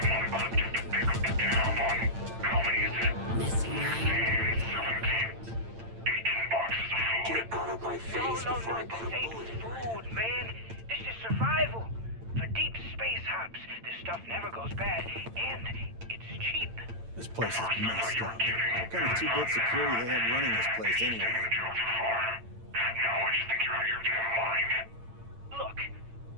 want equipped to pick up the tab on how many is it? Messing around. 17. 18 boxes of food. Get out of my face before I put a This bullet ain't in you. food, man. This is survival. For deep space hops, this stuff never goes bad, and it's cheap. This place is messed up. What kind of two-bit security they have running this place anyway? Now I just think you're out of your damn mind. Look,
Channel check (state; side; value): late; left; 8.9 ms